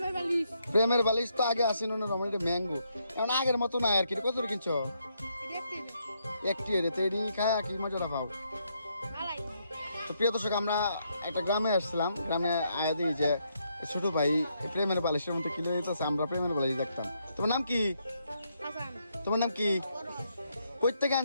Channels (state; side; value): inverted; both; correlation -0.76